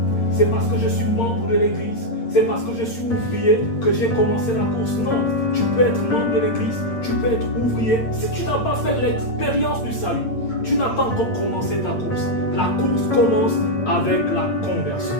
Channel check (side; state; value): right; late; 8.8 ms